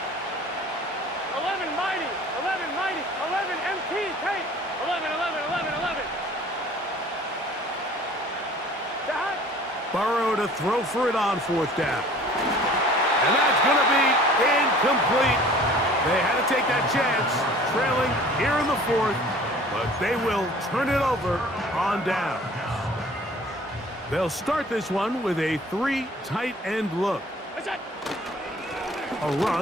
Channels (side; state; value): both; normal; correlation 0.49